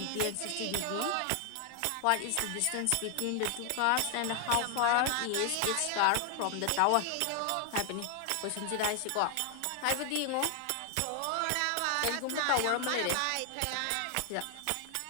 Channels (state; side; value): different; both; correlation 0.00